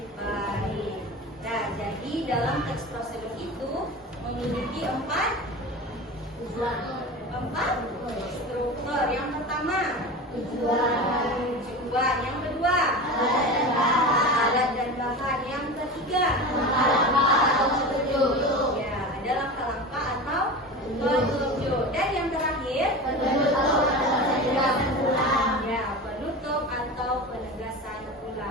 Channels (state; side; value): normal; both; correlation 0.29